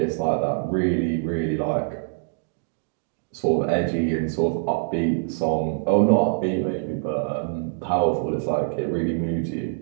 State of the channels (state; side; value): silent; left; digital silence